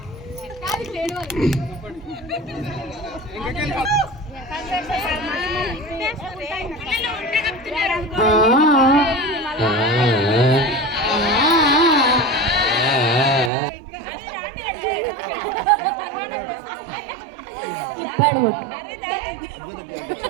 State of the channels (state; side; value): drops out; left; at 13.5 s